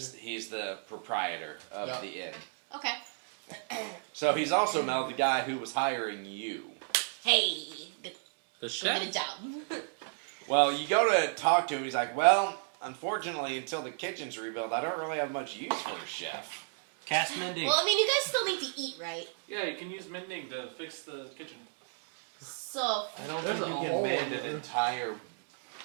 he's the proprietor of Yeah. the inn. Okay. So he's also Mel, the guy who was hiring you. Hey, good, The go chef? get a job. Well, you go to talk to him. He's like, well, unfortunately, until the kitchen's rebuilt, I don't really have much use for a chef. Cast mending. Well, I mean, you guys still need to eat, right? Yeah, you can use mending to fix the kitchen. So, I don't There's think a you hole can mend in an there. entire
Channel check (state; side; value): silent; left; digital silence